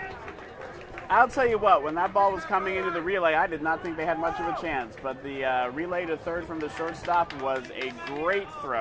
I'll tell you what, when that ball was coming into the relay, I did not think they had much of a chance, but the relay to third from the shortstop was a great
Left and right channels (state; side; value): identical; both; correlation 1.00